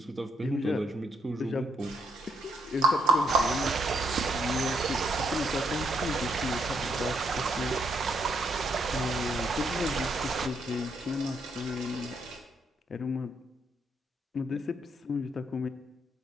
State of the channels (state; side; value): normal; both; correlation 0.74